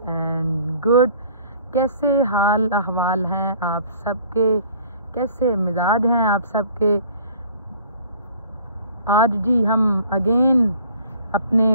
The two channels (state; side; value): inverted; both; correlation -0.52